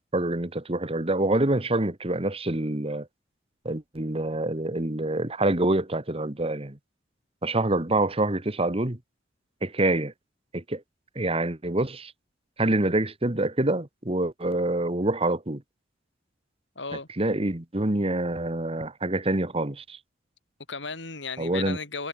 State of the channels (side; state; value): both; normal; correlation 0.47